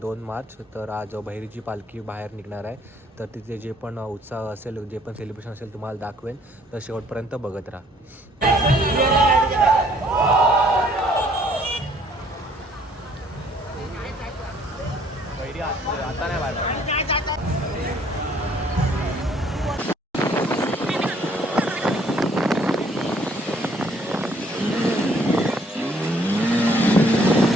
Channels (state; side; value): normal; both; correlation 0.62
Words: 2 मार्च. तर आज बहिरीची पालखी बाहेर निघणार आहे. तर तिथे जे पण उत्साह असेल, जे पण सेलिब्रेशन असेल तुम्हाला दाखवेन. तर शेवटपर्यंत बघत राहा. बहिरी आता नाही बाहेर.